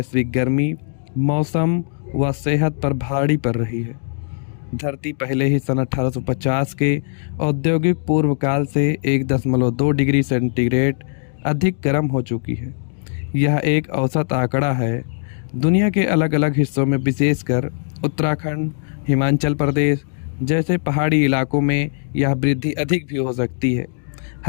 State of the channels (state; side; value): silent; right; digital silence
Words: गर्मी मौसम व सेहत पर भारी पड़ रही है। धरती पहले ही सन 1850 के औद्योगिक पूर्व काल से 1.2 डिग्री सेंटीग्रेड अधिक गर्म हो चुकी है। यह एक औसत आंकड़ा है। दुनिया के अलग अलग हिस्सों में विशेषकर उत्तराखंड, हिमाचल प्रदेश जैसे पहाड़ी इलाकों में यह वृद्धि अधिक भी हो सकती है।